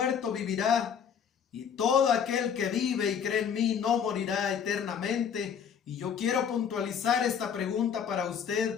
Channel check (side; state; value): right; quieter; 7.6 dB